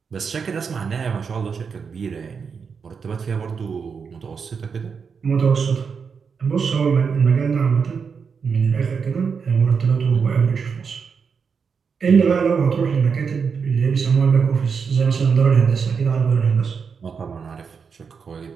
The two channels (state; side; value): quieter; left; 5.9 dB